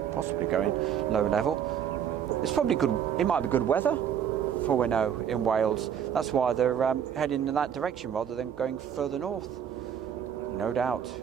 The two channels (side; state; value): left; quieter; 8.8 dB